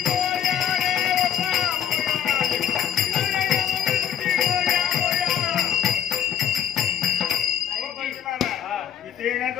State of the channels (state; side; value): quieter; right; 9.7 dB